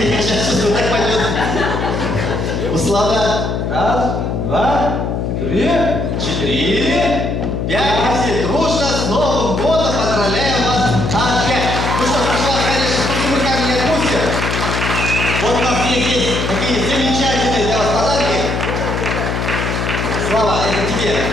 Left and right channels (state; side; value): noise; left; hum, 1 dB below the sound